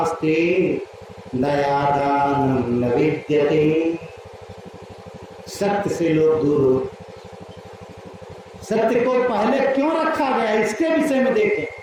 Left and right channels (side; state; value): both; identical; correlation 1.00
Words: दयादानं न विद्यते। सत्य से लोग दूर हो। सत्य को पहले क्यों रखा गया इसके विषय में देखें।